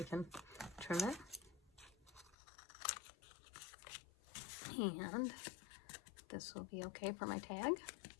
can trim it. And this will be okay for my tag.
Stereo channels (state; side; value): drops out; right; at 2.4 s